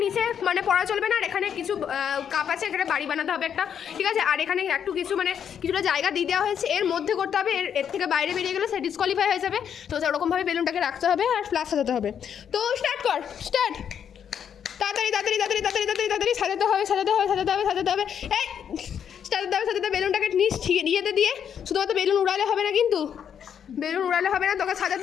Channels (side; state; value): right; quieter; 8.3 dB